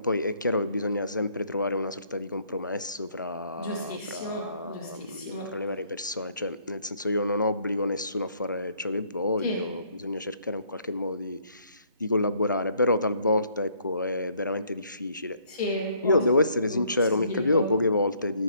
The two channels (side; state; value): both; inverted; correlation -0.65